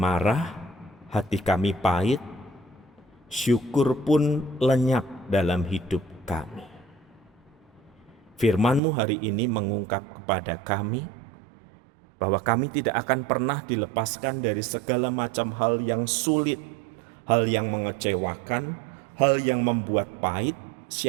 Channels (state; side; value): drops out; left; at 8.8 s